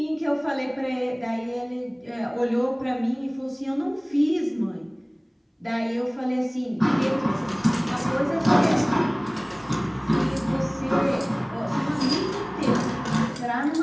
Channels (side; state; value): both; identical; correlation 1.00